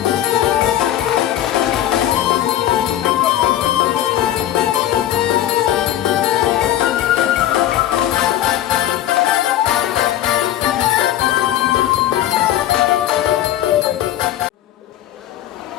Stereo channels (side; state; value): right; quieter; 12.5 dB